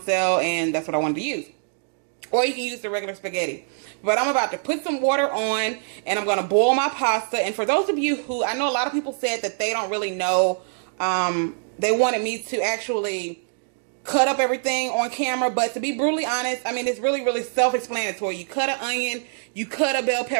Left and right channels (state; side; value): silent; left; digital silence